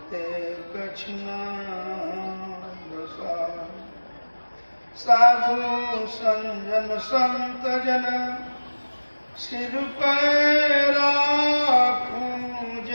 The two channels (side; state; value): both; inverted; correlation -1.00